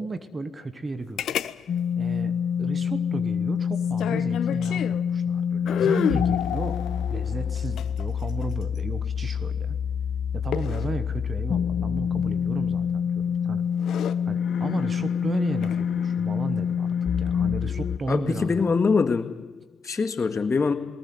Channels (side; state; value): right; quieter; 5.4 dB